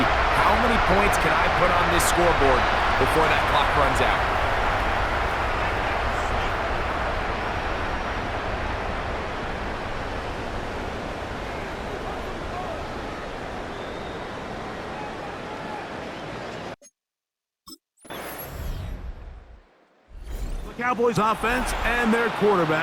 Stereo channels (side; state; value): both; identical; correlation 1.00